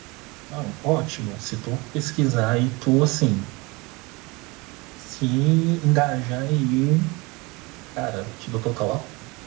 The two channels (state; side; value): quieter; left; 25.4 dB